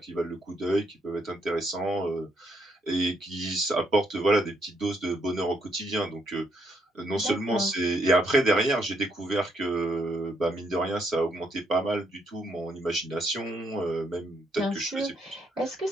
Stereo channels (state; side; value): normal; both; correlation 0.74